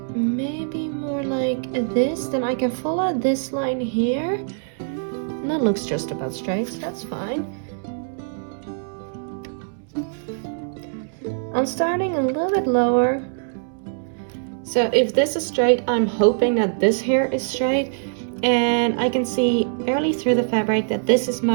Maybe more like this, then I can follow this line here. And that looks just about straight, so that's fine. I'm starting a little bit lower. So if this is straight, I'm hoping that this here is straight. and I can see barely through the fabric that this is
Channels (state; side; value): silent; left; 63 dB below the other